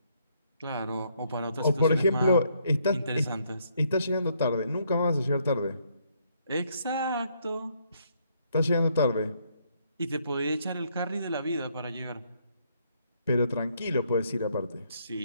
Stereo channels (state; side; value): inverted; both; correlation -0.71